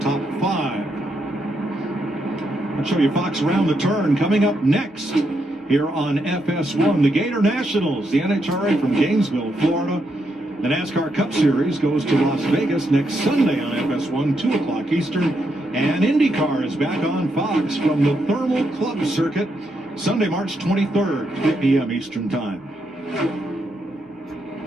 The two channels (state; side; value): normal; both; correlation 0.80